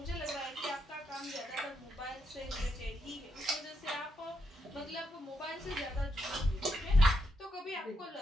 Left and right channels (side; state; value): both; normal; correlation 0.80